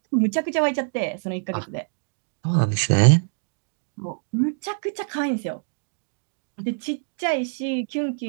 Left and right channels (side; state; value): left; silent; 62 dB below the other